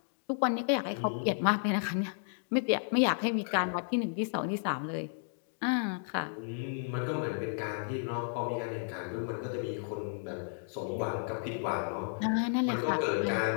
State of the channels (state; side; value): silent; right; digital silence